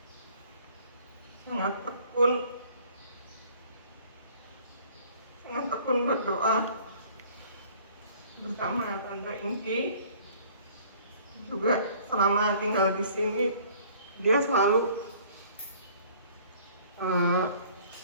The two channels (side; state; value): both; inverted; correlation -0.54